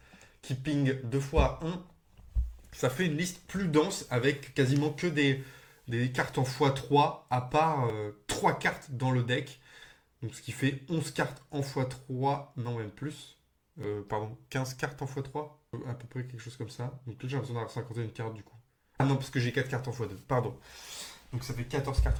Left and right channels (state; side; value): identical; both; correlation 1.00